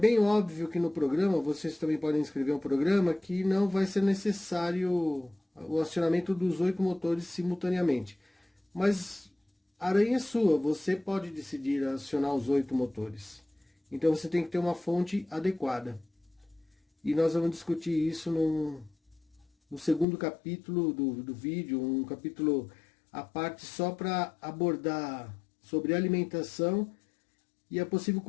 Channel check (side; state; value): right; drops out; at 20.1 s